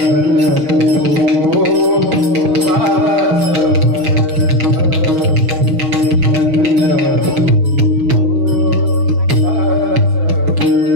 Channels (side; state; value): left; late; 6.3 ms